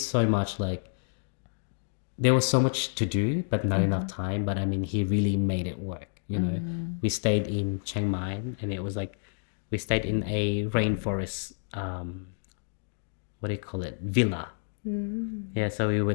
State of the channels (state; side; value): silent; right; digital silence